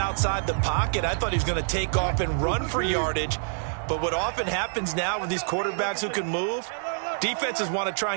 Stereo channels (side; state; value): left; silent; digital silence